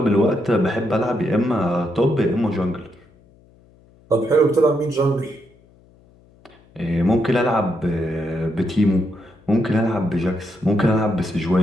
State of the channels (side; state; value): left; noise; hum, 29 dB below the sound